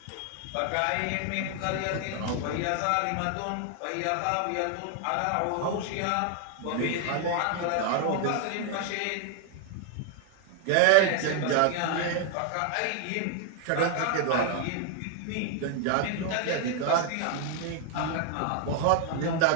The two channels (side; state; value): both; different; correlation 0.00